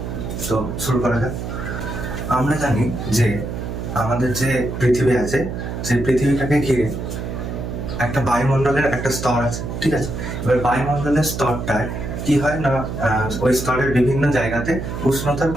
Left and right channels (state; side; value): noise; right; hum, 5 dB below the sound